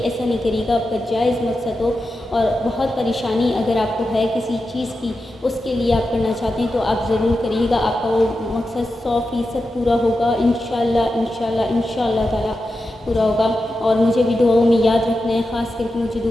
نہیں کریے گا، آپ کا جائز مقصد ہو، اور بہت پریشانی اگر آپ کو ہے کسی چیز کی، اس کے لیے آپ کرنا چاہتے ہیں تو آپ ضرور کریے گا، آپ کا وہ مقصد 100% پورا ہوگا، انشاءاللہ انشاءاللہ انشاءاللہ تعالیٰ پورا ہوگا۔ اور مجھے بھی دعاؤں میں یاد رکھنا ہے، خاص کر کے مجھے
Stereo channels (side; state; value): both; normal; correlation 0.90